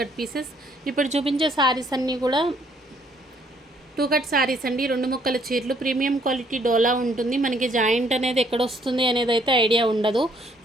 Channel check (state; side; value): normal; both; correlation 0.66